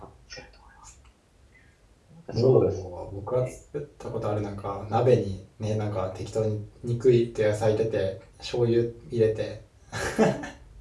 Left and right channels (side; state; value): both; identical; correlation 1.00